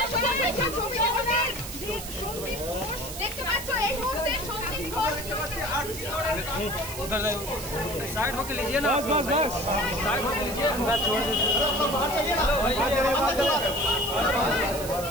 দেখতে পাচ্ছ এই মুহূর্তে সঞ্জীব ঘোষ उधर साइड होके लीजिए ना बस बस बस साइड होके लीजिए मैं छोड़ देता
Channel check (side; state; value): right; noise; hiss, 10 dB below the sound